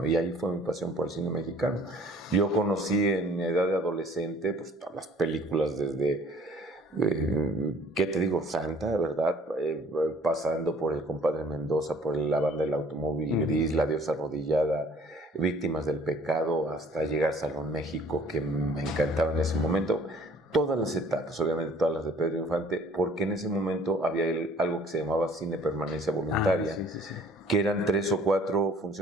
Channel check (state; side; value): normal; both; correlation 0.54